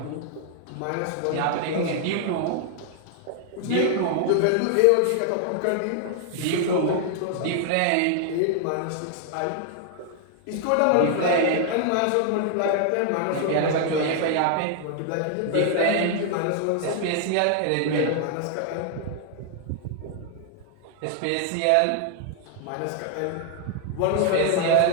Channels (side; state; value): both; different; correlation 0.00